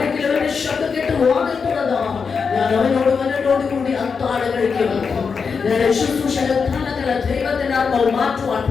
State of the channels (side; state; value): right; quieter; 5.6 dB